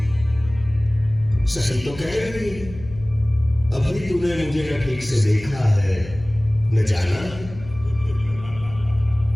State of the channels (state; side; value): noise; left; hum, 15 dB below the sound